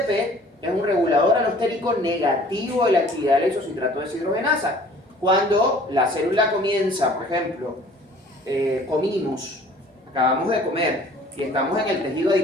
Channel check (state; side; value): normal; both; correlation 0.51